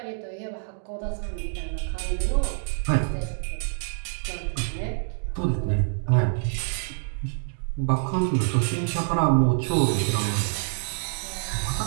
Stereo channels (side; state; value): left; silent; digital silence